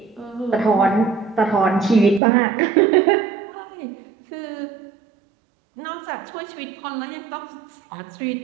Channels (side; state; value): left; drops out; at 2.2 s